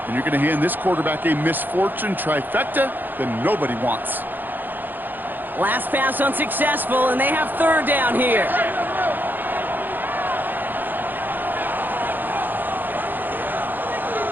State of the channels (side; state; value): left; late; 0.088 ms